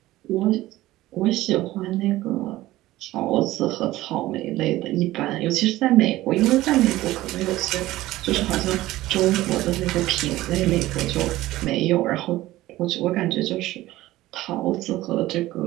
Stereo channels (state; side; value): quieter; left; 16.7 dB